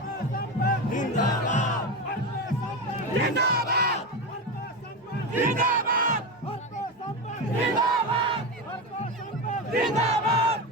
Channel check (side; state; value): both; normal; correlation 0.17